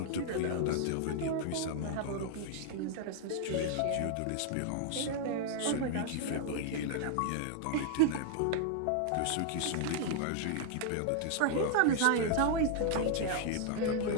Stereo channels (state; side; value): different; both; correlation 0.00